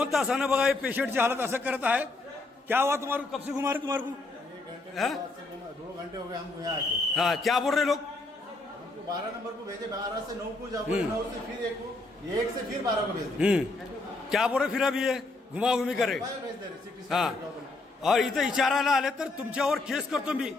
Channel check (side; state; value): right; quieter; 3.2 dB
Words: तासानं बघा हे पेशंटची हालत असं करत आहे। क्या हुआ तुम्हारे कब से घुमा रहे तुम्हारे को? 2 घंटे हो गए हमको यहाँ आके। हाँ क्या बोल रहे लोग? 12 नंबर को भेजे, 12 से 9 को जाओ, 9 से फिर 1 को, 1 से फिर 12 को भेज। क्या बोल रहे फिर अभी ये घुमा घुमी करे। हाँ और इथं विचारायला आले तर तुमच्यावर केस करतो मी,